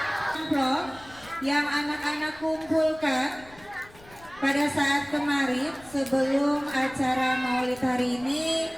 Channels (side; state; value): left; noise; rumble, 24 dB below the sound